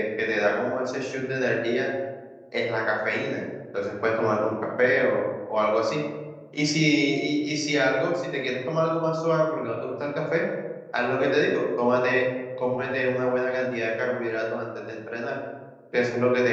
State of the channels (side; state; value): both; identical; correlation 1.00